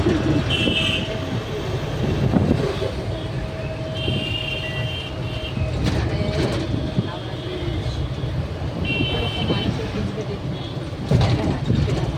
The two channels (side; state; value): both; identical; correlation 1.00